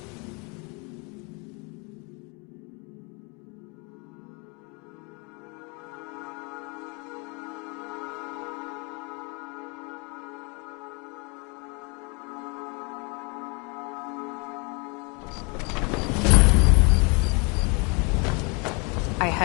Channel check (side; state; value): right; quieter; 31.7 dB